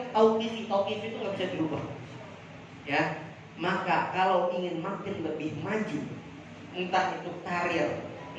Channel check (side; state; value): both; identical; correlation 1.00